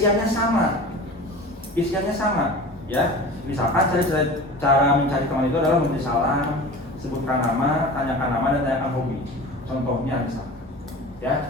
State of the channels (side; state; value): both; normal; correlation 0.36